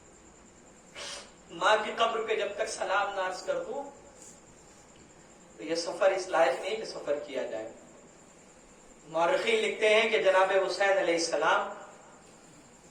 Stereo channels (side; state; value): both; identical; correlation 1.00